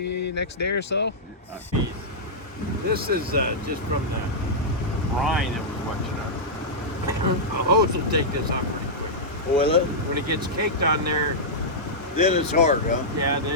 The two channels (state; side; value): normal; both; correlation -0.10